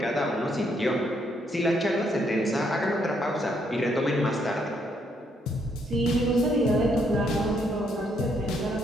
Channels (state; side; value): normal; both; correlation 0.73